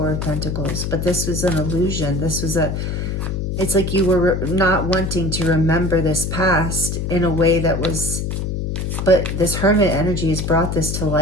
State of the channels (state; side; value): noise; left; hum, 2 dB below the sound